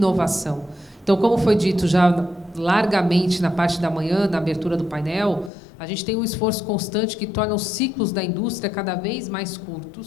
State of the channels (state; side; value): drops out; right; at 5.5 s